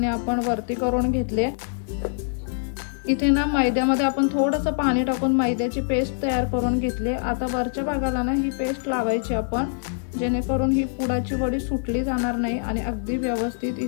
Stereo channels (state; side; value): silent; right; digital silence